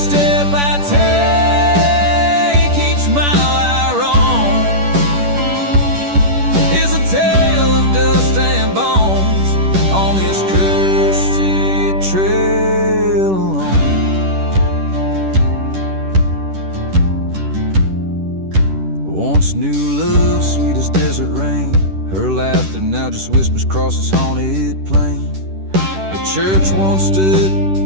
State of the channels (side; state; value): left; late; 10 ms